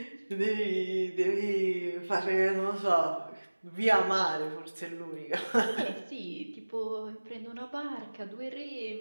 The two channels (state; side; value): inverted; both; correlation -1.00